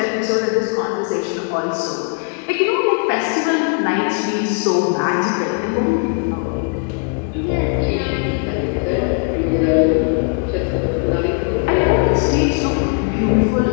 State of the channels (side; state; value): right; quieter; 39.5 dB